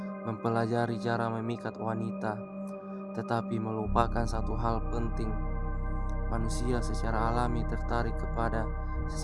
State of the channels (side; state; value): both; identical; correlation 1.00